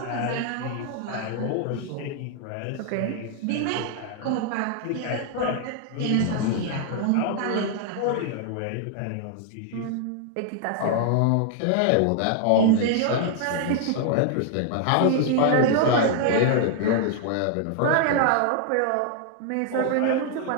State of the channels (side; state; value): both; different; correlation 0.00